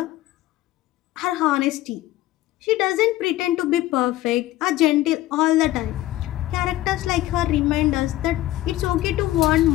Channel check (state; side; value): quieter; right; 15.7 dB